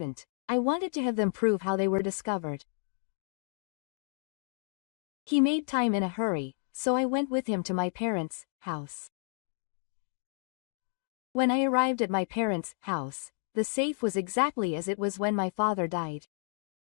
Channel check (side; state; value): right; silent; 57 dB below the other